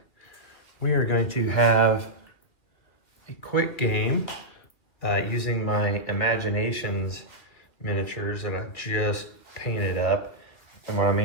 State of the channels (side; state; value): right; late; 2.6 ms